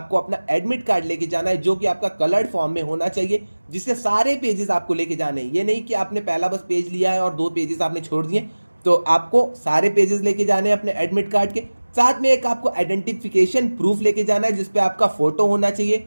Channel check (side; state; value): both; inverted; correlation -1.00